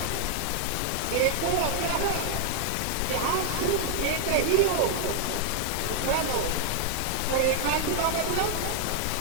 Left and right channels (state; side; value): different; both; correlation 0.00